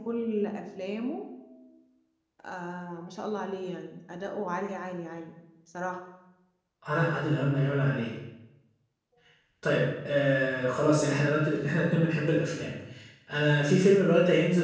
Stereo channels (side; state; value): both; identical; correlation 1.00